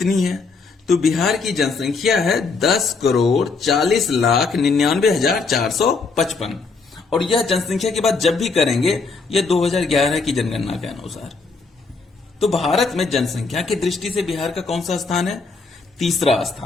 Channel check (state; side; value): quieter; right; 4.3 dB